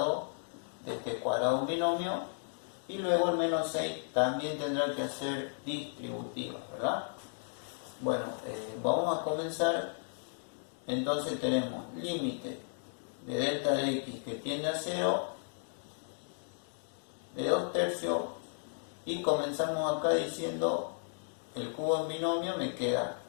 de este cuadrado de un binomio, y luego el menos 6 también tendrá que hacer distributivas, ¿verdad? Bueno, vamos a comenzar. Entonces tenemos límite de delta de x que tiende a 0 de 2/3, y comenzamos acá diciendo el cubo en binomio me queda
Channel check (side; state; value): right; silent; digital silence